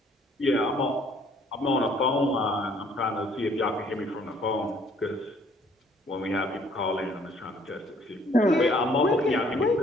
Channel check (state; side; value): normal; both; correlation 0.61